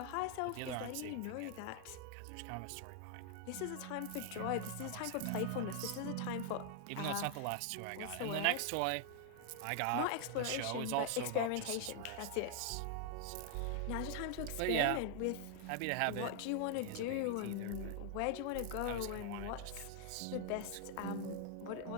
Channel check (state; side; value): different; both; correlation 0.00